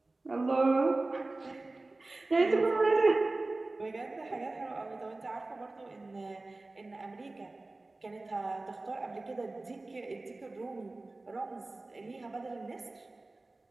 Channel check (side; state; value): left; quieter; 3.1 dB